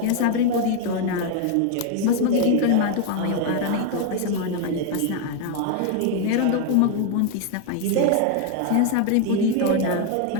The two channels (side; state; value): both; different; correlation 0.01